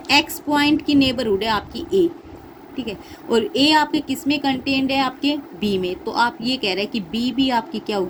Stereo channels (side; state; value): both; identical; correlation 1.00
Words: एक्स पॉइंट की नेबरहुड है आपकी ए, ठीक है, और ए आपके किस में कंटेन्ड है, आपके बी में, तो आप ये कह रहे हैं कि बी भी आपकी क्या